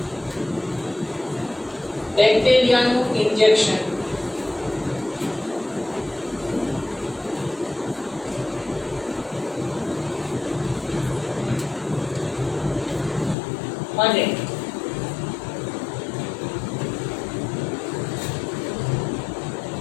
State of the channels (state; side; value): drops out; right; at 13.4 s